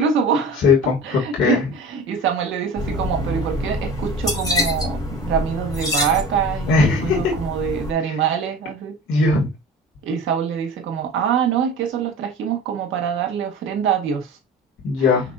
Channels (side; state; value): both; normal; correlation 0.36